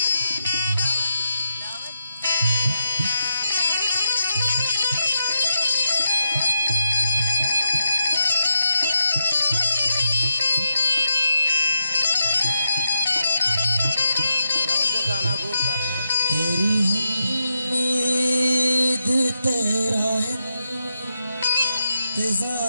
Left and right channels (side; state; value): both; inverted; correlation -0.82